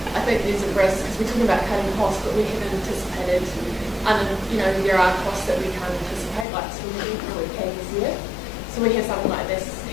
I think there's a risk because we're talking about cutting costs, but we haven't anticipated, there are costs that we can't anticipate, like swimming that we've had this year. So we have something like this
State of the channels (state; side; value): drops out; right; at 6.5 s